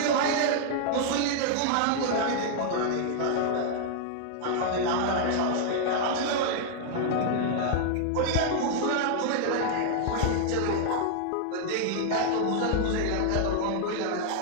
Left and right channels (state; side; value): different; both; correlation -0.01